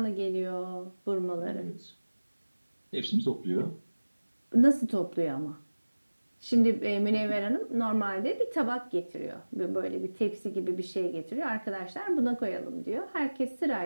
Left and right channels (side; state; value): both; inverted; correlation -1.00